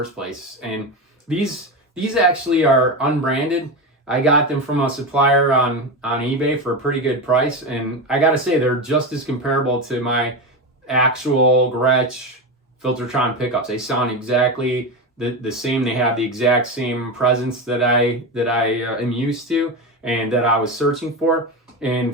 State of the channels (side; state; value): both; normal; correlation 0.18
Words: place. And these actually are unbranded. I got them from a supplier on eBay for a pretty good price, and I gotta say they're just as comparable to my actual Gretsch Filtertron pickups. They sound exactly the same. They have the exact same presence that I am used to and that I was searching for.